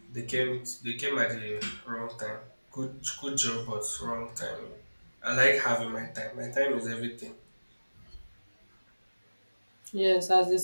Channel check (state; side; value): inverted; both; correlation -1.00